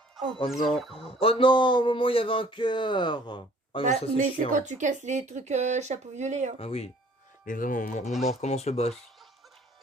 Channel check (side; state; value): both; normal; correlation 0.55